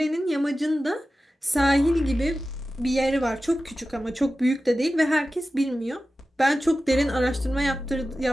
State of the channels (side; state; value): both; normal; correlation 0.94